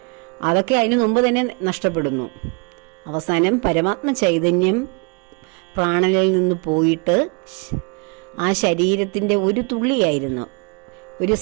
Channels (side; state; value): left; quieter; 33.0 dB